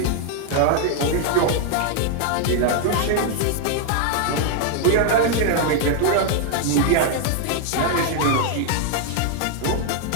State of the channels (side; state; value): both; different; correlation 0.00